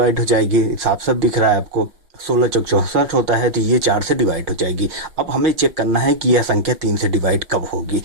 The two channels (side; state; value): left; late; 5.6 ms